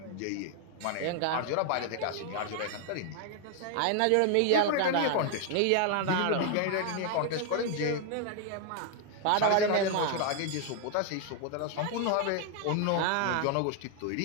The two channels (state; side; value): different; both; correlation 0.00